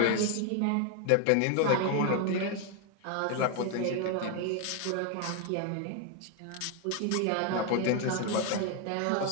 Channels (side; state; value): both; different; correlation 0.01